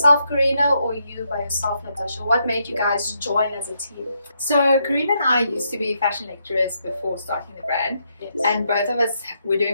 CARINA, or you by yourself, Natasha? What made you guys join as a team? So CARINA and I used to be fashion lecturers before starting the brand. Yes. And both of us were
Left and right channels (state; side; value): inverted; both; correlation -0.79